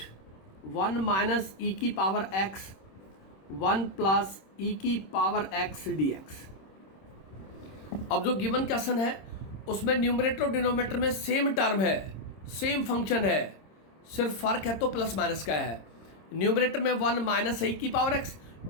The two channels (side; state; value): right; late; 26 ms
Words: 1 माइनस ई की पावर x 1 प्लस ई की पावर x dx. अब जो गिवन क्वेश्चन है उसमें न्यूमरेटर और डिनोमिनेटर में सेम टर्म है, सेम फंक्शन है, सिर्फ फर्क है तो प्लस माइनस का है. न्यूमरेटर में 1 माइनस ई की पावर x,